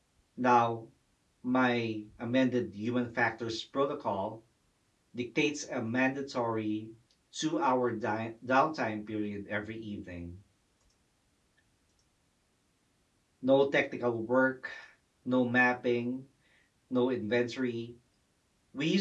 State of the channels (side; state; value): both; identical; correlation 1.00